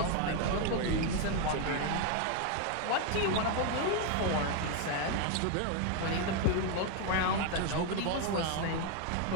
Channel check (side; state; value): both; different; correlation 0.00